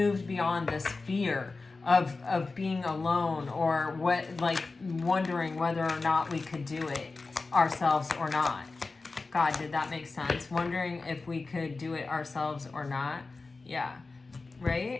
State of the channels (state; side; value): quieter; right; 3.8 dB